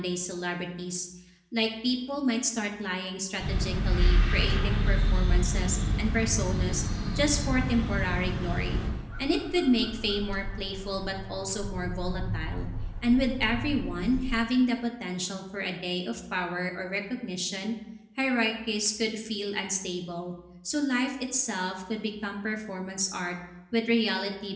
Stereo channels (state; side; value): identical; both; correlation 1.00